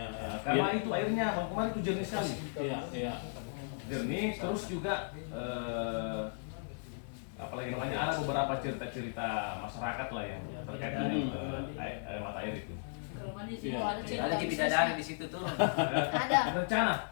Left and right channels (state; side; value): silent; right; digital silence